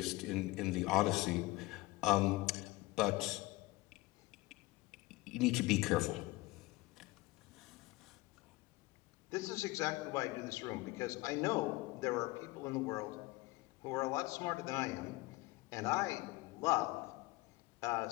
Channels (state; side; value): quieter; right; 21.1 dB